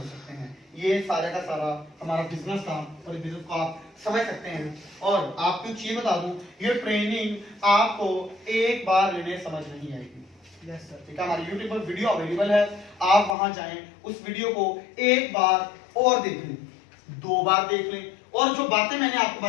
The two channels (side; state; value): right; drops out; at 13.4 s